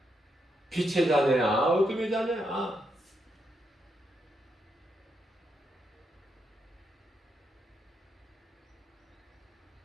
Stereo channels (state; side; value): normal; both; correlation 0.81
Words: 빛의 자녀야, 어둠의 자녀야.